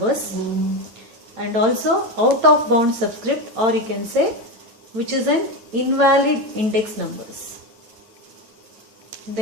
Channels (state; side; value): late; left; 9.4 ms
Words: and also out of bound subscript, or you can say which is an invalid index numbers.